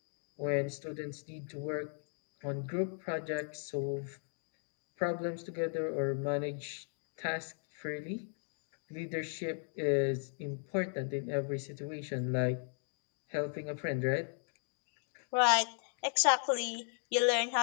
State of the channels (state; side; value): silent; right; 53 dB below the other